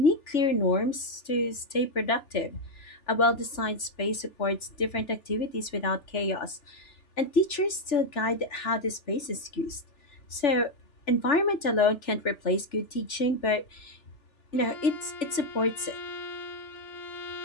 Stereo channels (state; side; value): late; right; 3.4 ms